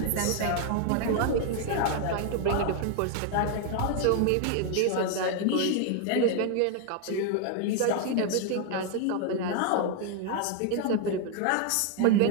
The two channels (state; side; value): different; both; correlation 0.00